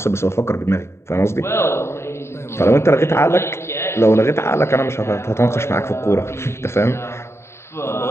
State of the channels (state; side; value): late; right; 0.13 ms